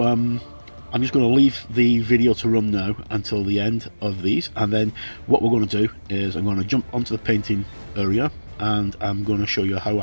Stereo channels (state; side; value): inverted; both; correlation -1.00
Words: I'm just going to leave the video to run now until the end of these, and then what we're going to do is I'm going to jump onto the painting area, and I'm going to show you how